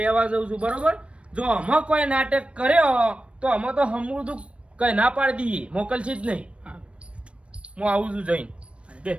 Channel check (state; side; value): late; left; 0.060 ms